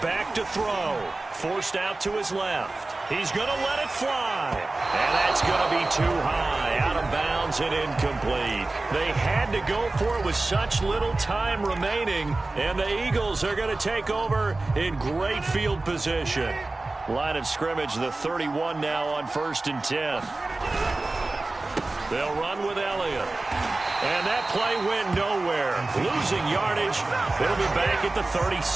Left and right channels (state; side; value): quieter; left; 3.1 dB